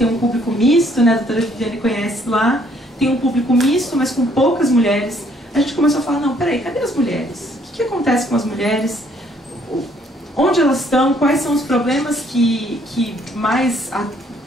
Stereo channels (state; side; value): normal; both; correlation 0.65